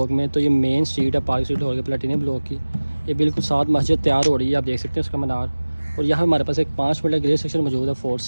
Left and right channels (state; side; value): inverted; both; correlation -1.00